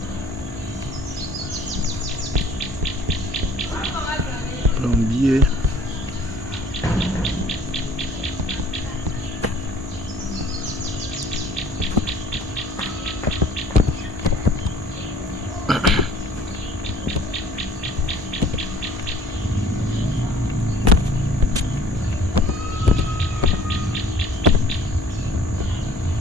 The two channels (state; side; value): normal; both; correlation 0.53